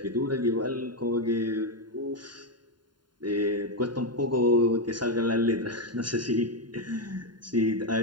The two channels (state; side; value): late; left; 0.71 ms